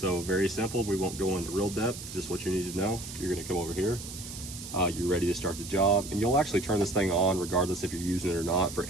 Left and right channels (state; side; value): noise; right; hiss, 11 dB below the sound